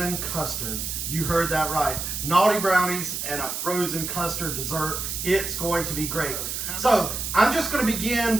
custard. You heard that right. Naughty Brownies and a frozen custard dessert. It's going to be great. So I'm just going to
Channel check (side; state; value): right; noise; hiss, 4 dB below the sound